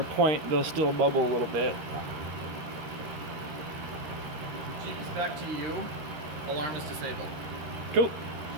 point, they'll still bubble a little bit. Jeep's back to you. Alarm is disabled. Cool.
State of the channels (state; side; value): late; left; 13 ms